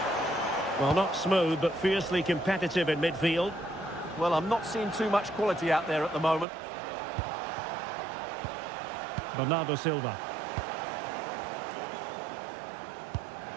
Well, not smooth, but fiercely competitive in midfield. Well, I'm not seeing too much quality out there at the moment. Bernardo Silva.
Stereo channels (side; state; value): left; drops out; at 6.5 s